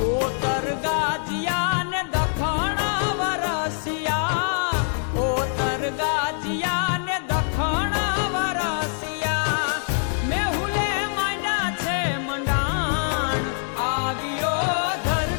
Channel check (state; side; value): silent; right; digital silence